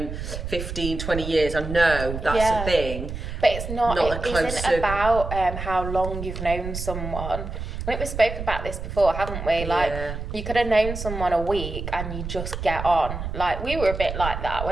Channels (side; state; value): right; noise; rumble, 6 dB below the sound